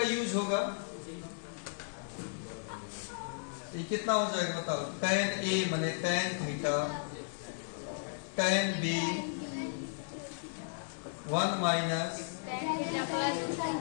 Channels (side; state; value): right; silent; digital silence